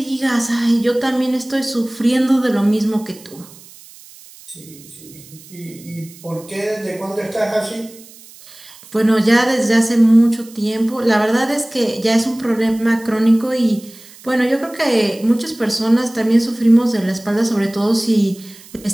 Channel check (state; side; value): noise; right; hiss, 21 dB below the sound